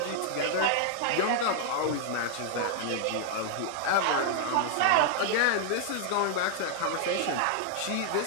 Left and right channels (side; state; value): both; different; correlation 0.00